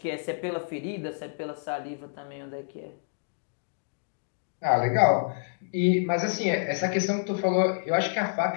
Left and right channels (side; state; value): right; silent; digital silence